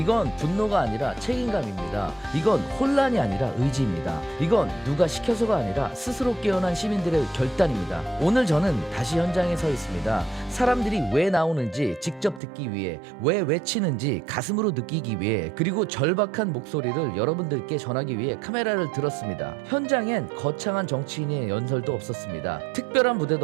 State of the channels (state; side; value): drops out; left; at 12.4 s